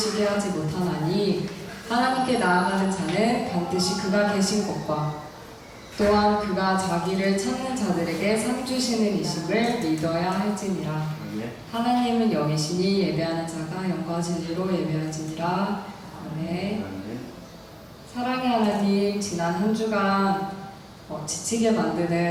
하지 못하나니 하나님께 나아가는 자는 반드시 그가 계신 곳과 또한 그가 자기를 찾는 자들에게 상 주시는 이심을 믿어야 할지니라. 하나님은 영이시니 예배하는 자가 영과 진리로 예배할지니라. 아멘. 사랑의 하나님, 지난 한 주간 지치게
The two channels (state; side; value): identical; both; correlation 1.00